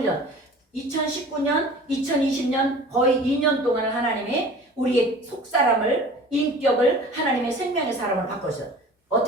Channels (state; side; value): normal; both; correlation 0.43